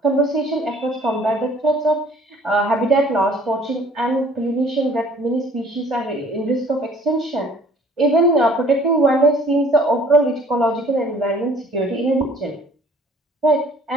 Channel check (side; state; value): both; normal; correlation 0.55